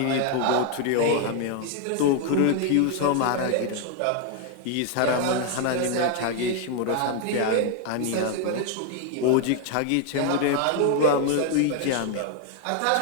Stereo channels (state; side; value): different; both; correlation 0.00